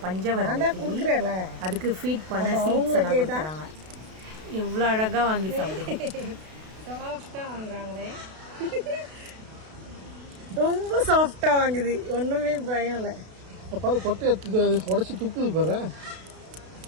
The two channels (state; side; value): late; left; 32 ms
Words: பஞ்சவர்ண கிளி, அதுக்கு ஃபீட் பண்ண சீட்ஸ் எல்லாம் கொடுக்குறாங்க. எவ்வளோ அழகாக வாங்கி சாப்பிடுங்க. சாஃப்டாக வாங்குறாங்களே, ரொம்ப சாஃப்டாக வாங்குது, ஒன்றுமே பயம் இல்லை. பாரு கொட்டை உடச்சி துப்புது பாரு.